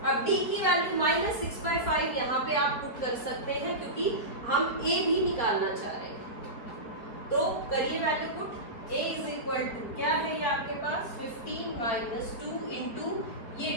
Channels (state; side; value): late; right; 4.8 ms